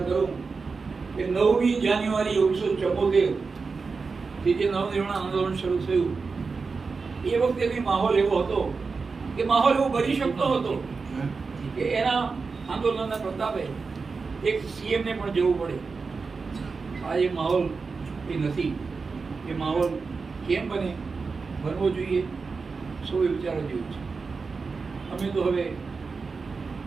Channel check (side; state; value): left; quieter; 4.6 dB